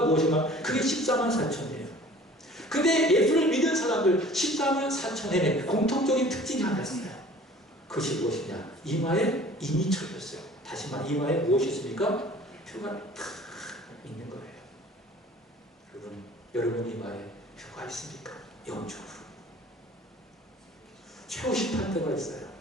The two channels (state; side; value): normal; both; correlation 0.48